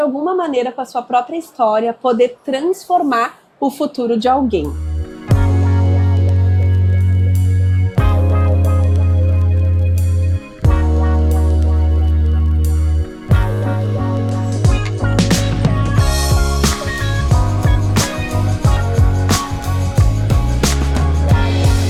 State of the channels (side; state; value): both; identical; correlation 1.00